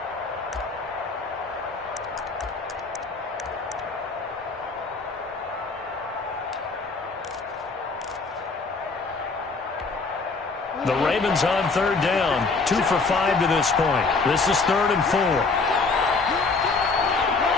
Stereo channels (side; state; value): right; quieter; 4.1 dB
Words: The Ravens on 3rd down. 2 for 5 to this point. This is 3rd and 4.